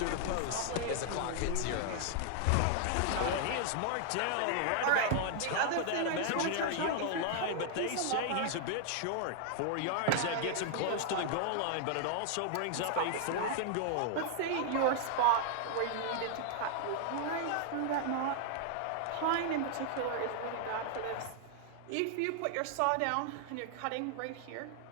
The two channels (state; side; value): different; both; correlation 0.00